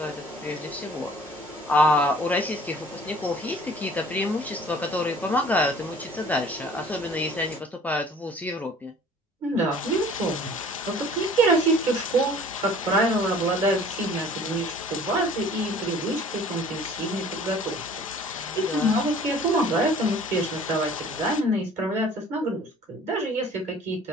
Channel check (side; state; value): both; normal; correlation 0.50